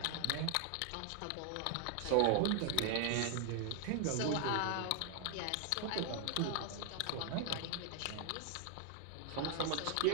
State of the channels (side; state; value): both; different; correlation 0.00